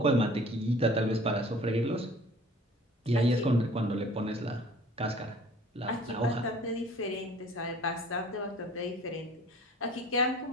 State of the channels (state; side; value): normal; both; correlation 0.48